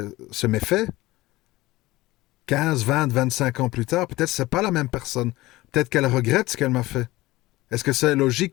ce méfait, 15, 20, 25 ans plus tard, peut-être que c'est pas la même personne. Peut-être qu'elle regrette ce qu'elle m'a fait. Est-ce que c'est logique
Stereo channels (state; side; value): quieter; right; 18.9 dB